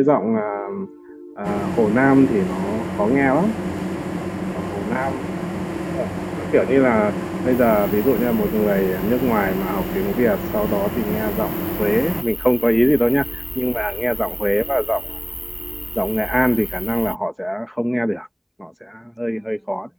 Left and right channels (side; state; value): both; identical; correlation 1.00